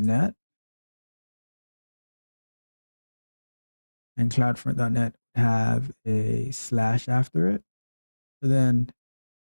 And cloudfront.net have a slash after it.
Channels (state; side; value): inverted; both; correlation -1.00